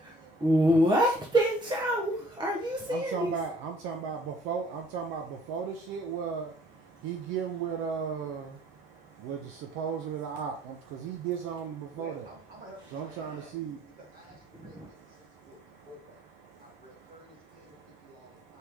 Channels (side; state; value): both; normal; correlation 0.58